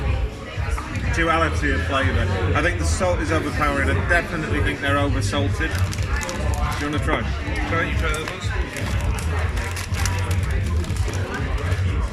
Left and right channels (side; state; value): both; identical; correlation 1.00